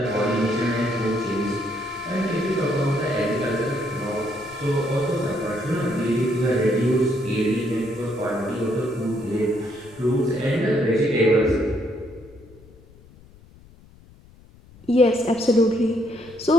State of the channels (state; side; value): noise; left; rumble, 24 dB below the sound